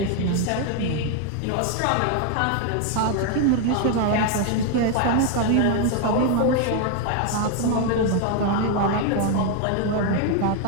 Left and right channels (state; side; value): different; both; correlation 0.00